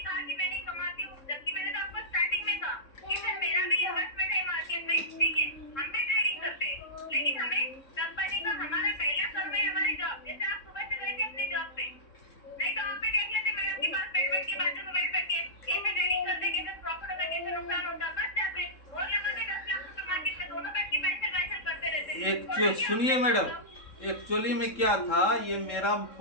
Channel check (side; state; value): right; late; 3.6 ms